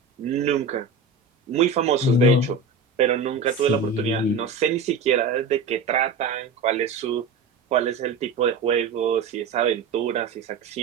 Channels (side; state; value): left; quieter; 4.6 dB